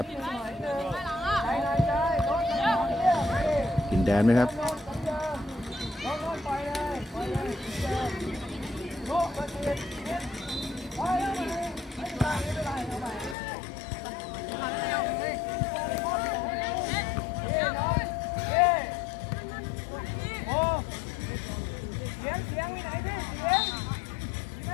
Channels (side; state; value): right; drops out; at 13.4 s